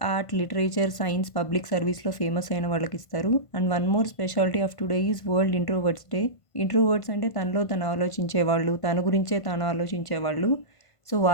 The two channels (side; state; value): right; late; 1.5 ms